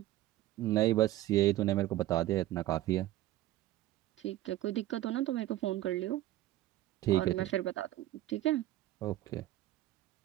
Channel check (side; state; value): left; quieter; 14.9 dB